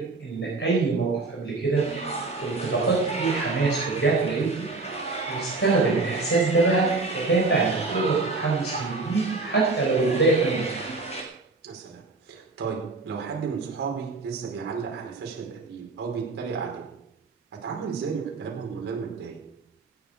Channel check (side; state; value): left; quieter; 3.5 dB